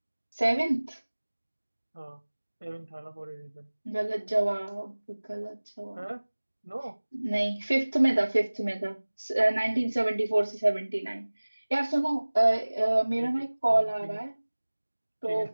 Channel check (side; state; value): both; inverted; correlation -1.00